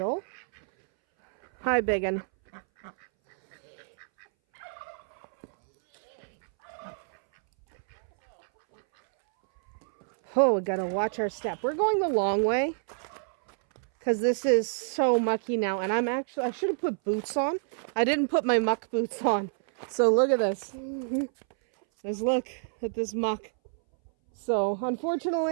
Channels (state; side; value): silent; left; 59 dB below the other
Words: Hi, biggin. Oh, we gotta watch our step. We're going the long way because this is so mucky now. And I should have put boots on. I didn't put my muck boots on. So look at this. Let's look at this muck. So